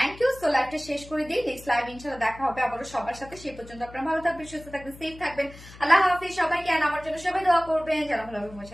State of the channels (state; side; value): noise; left; hum, 19 dB below the sound